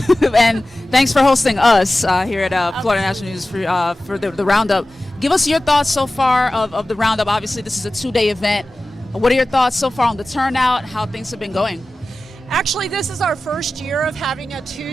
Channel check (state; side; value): normal; both; correlation 0.96